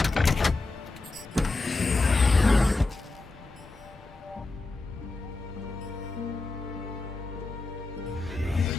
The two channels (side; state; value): right; quieter; 3.3 dB